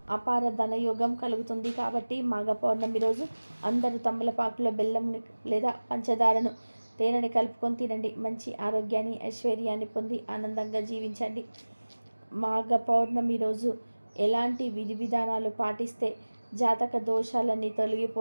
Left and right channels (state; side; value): inverted; both; correlation -1.00